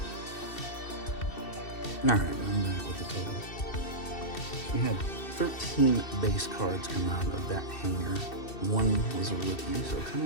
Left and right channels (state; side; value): late; right; 2.7 ms